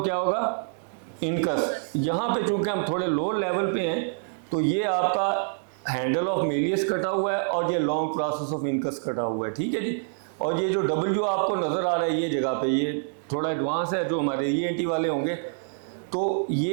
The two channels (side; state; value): left; silent; digital silence